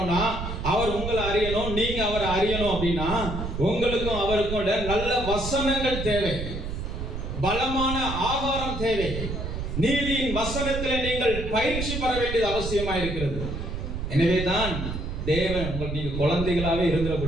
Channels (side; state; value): right; noise; rumble, 5 dB below the sound